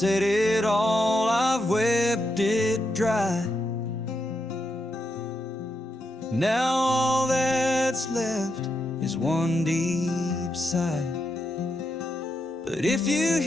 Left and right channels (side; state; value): both; normal; correlation 0.83